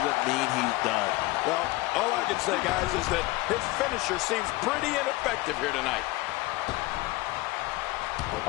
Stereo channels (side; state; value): right; quieter; 20.2 dB